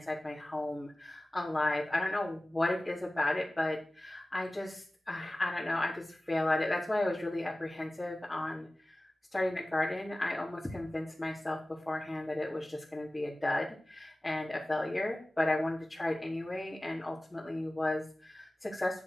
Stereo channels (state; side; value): normal; both; correlation 0.97